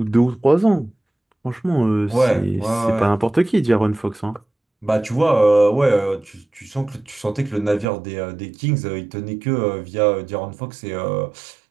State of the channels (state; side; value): drops out; left; at 7.9 s